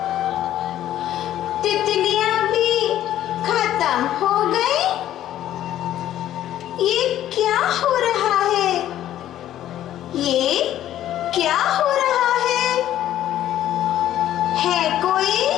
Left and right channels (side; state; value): right; quieter; 12.3 dB